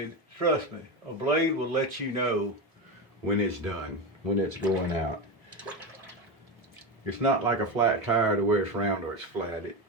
Trust me, a blade will let you know when it's done, when it's going out. It's not like a flat tire to where it's round or it's flat.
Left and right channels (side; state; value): both; normal; correlation 0.18